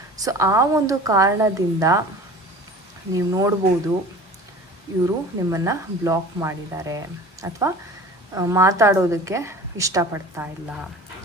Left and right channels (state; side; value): normal; both; correlation 0.41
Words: ಸೊ ಆ ಒಂದು ಕಾರಣದಿಂದ ನೀವು ನೋಡ್ಬೋದು ಇವರು ನಿಮ್ಮನ್ನು ಬ್ಲಾಕ್ ಮಾಡಿದ್ದಾರೆ ಅಥವಾ ಮಾತಾಡೋದಕ್ಕೆ ಇಷ್ಟಪಡ್ತಾ ಇಲ್ಲ.